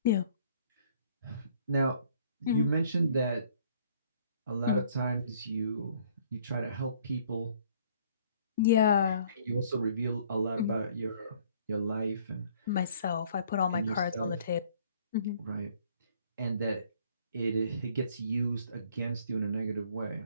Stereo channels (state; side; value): inverted; both; correlation -0.59